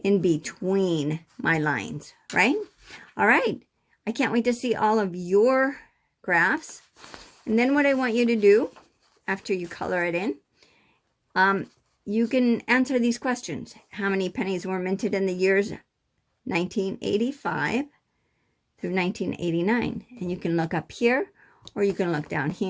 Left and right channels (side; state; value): both; identical; correlation 1.00